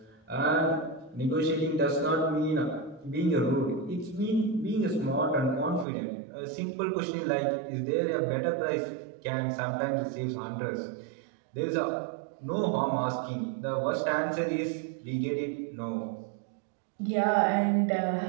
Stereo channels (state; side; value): drops out; left; at 5.9 s